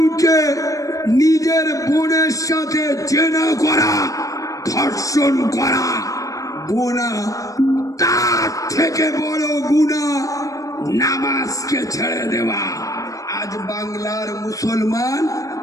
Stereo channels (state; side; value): late; right; 0.16 ms